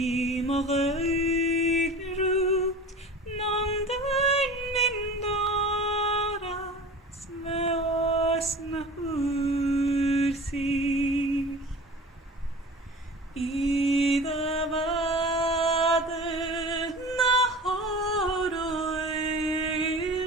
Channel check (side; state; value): both; normal; correlation 0.39